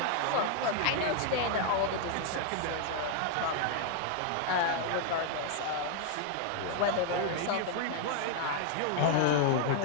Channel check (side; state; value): both; different; correlation 0.00